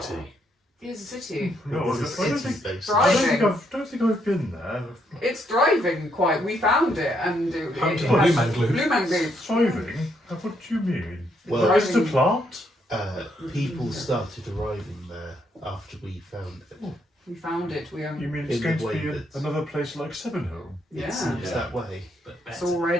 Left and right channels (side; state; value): both; normal; correlation 0.74